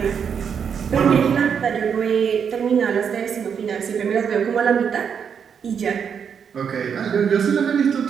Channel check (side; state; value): left; quieter; 7.2 dB